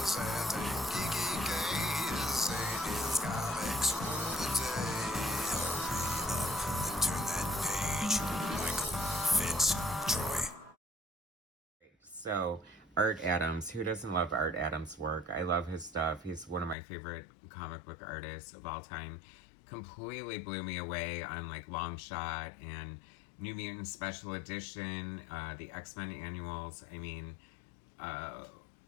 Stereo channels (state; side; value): drops out; right; at 16.8 s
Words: and geeky gaze. Sadie's comics rule the day. Hurry up and turn that page. Michael Fitz Troy. So, Art Adams, who doesn't love Art Adams' work? I love his stuff. He's one of my favorite comic book artists of all time. Completely blew me away on like Long Shot and New Mutants Special Edition, the X-Men annuals. I mean,